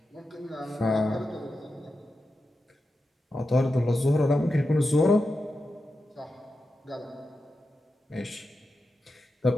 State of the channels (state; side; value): normal; both; correlation 0.90